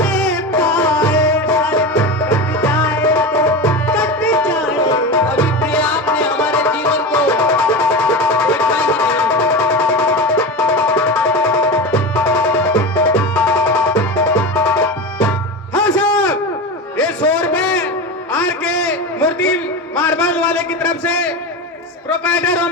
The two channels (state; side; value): normal; both; correlation 0.24